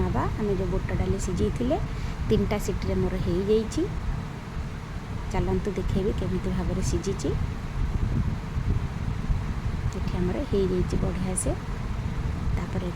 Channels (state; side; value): identical; both; correlation 1.00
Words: आम जो बुट डाली सिझे 3टा सीटी मोर हो जाइए। चलतु देखेबी केमिति भाव में सिझी। ये आमर हो जाइए बढ़िया से। तापर